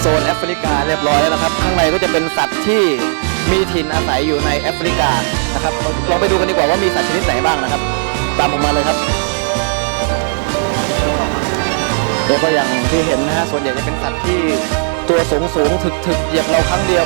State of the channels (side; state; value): left; silent; digital silence